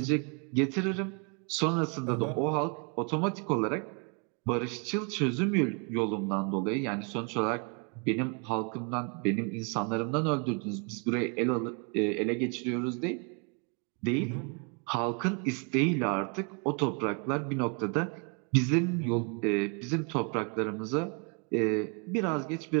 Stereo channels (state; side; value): quieter; left; 36.4 dB